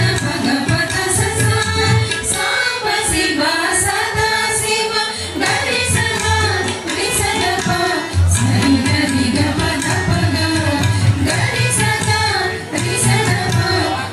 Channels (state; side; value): identical; both; correlation 1.00